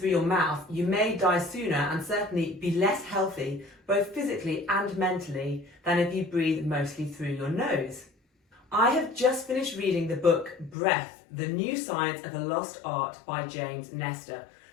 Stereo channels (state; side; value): drops out; right; at 10.8 s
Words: your mouth, you may die sooner and certainly be less healthy, both physically and mentally, than if you breathe mostly through your nose. I have just finished reading the book Breath, The New Science of a Lost Art by James Nestor.